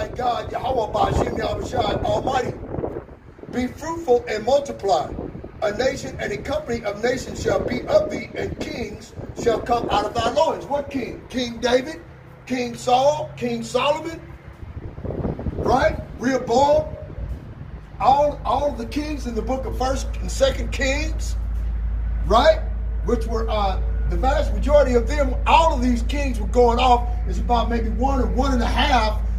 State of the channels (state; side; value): identical; both; correlation 1.00